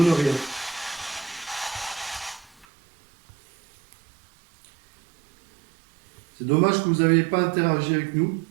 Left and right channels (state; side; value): drops out; left; at 2.7 s